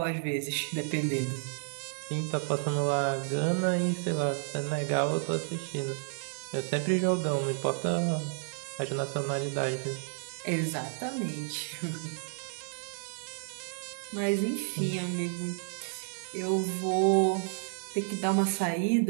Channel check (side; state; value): left; silent; digital silence